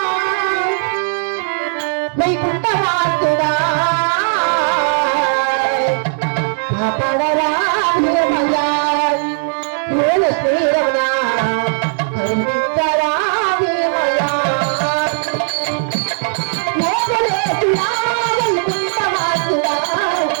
వైకుంఠవాసుడా కాపాడరా భీమయ్యా, మూల శ్రీరమణ కరుణించరా భీమయ్యా, మోసలేసుడా వైకుంఠవాసుడా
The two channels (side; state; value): left; silent; digital silence